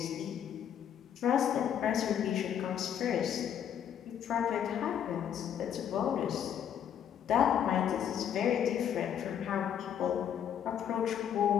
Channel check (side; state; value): right; quieter; 9.2 dB